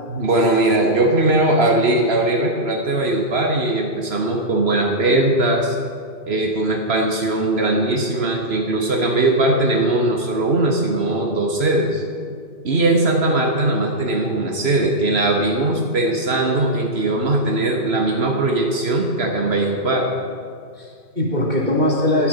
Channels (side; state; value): left; late; 3.0 ms